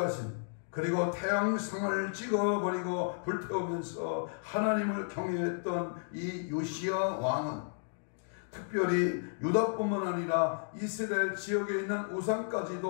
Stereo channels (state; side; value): silent; right; digital silence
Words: 그리고 태양성을 찍어버리고 불태우면서 하나님을 경외했던 이 요시야 왕은 특별히 유다뿐만 아니라 이스라엘 지역에 있는